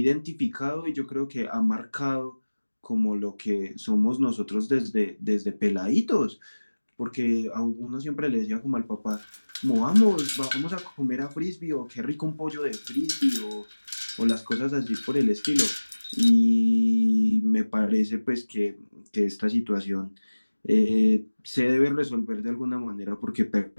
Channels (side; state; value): both; inverted; correlation -1.00